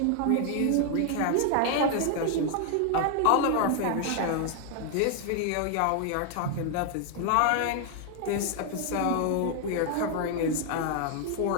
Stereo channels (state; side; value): different; both; correlation 0.00